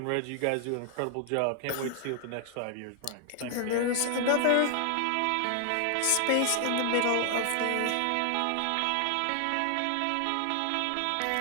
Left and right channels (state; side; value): different; both; correlation 0.00